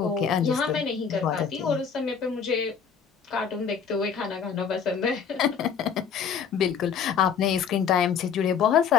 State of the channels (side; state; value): right; quieter; 6.9 dB